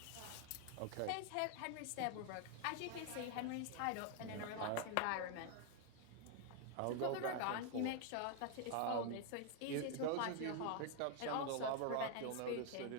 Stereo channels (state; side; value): different; both; correlation 0.01